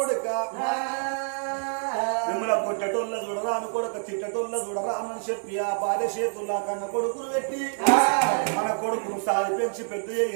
మిమ్మల్ని కొట్టటోళ్ళ చూడరా అని కొడుక తిట్టటోళ్ళ చూడరా అని చెప్పి ఆ భార్య చేతుల్లా కన్న కొడుకును పెట్టి మన కొడుకును సాది పెంచి పెద్ద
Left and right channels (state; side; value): silent; left; 60 dB below the other